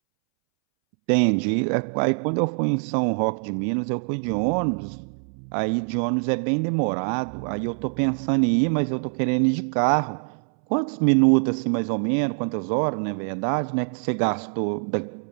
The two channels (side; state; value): left; silent; 63 dB below the other